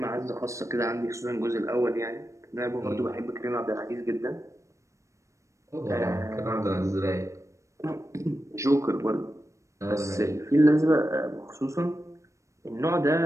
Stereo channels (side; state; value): left; late; 0.15 ms